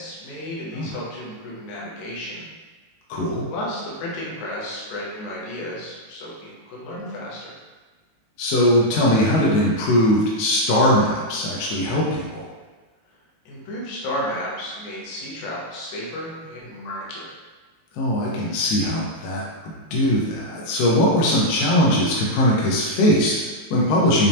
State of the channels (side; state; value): right; late; 18 ms